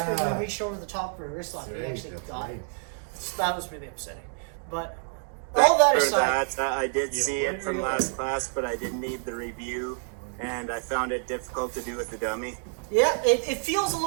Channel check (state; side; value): silent; left; 55 dB below the other